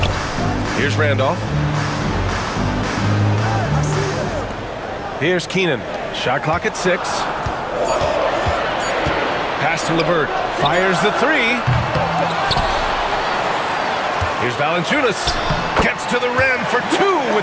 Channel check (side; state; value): both; identical; correlation 1.00